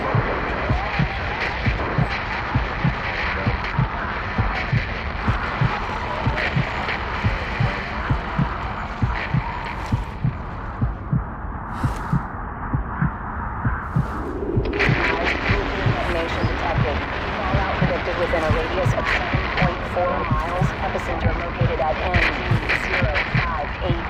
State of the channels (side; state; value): both; identical; correlation 1.00